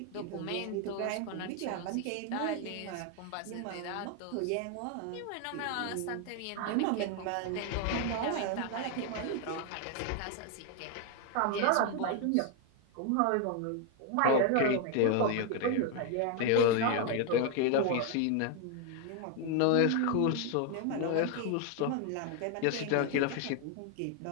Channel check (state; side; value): different; both; correlation 0.01